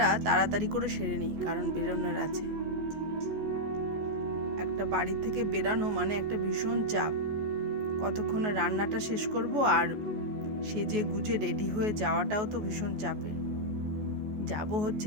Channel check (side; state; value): left; late; 14 ms